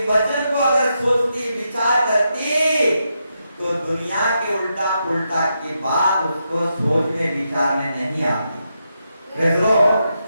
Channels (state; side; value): inverted; both; correlation -0.84